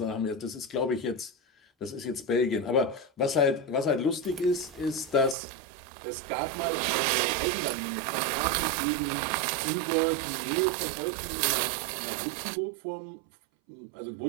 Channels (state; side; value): drops out; left; at 5.4 s